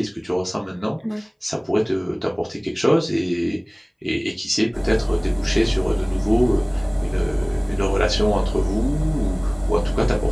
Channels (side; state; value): both; identical; correlation 1.00